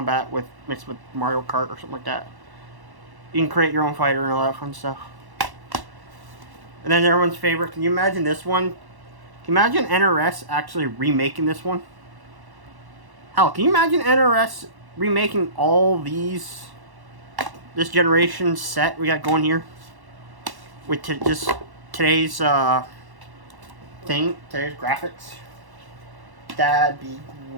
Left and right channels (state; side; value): late; left; 1.1 ms